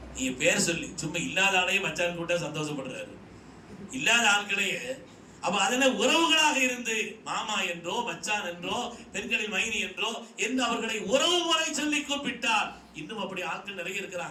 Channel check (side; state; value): both; identical; correlation 1.00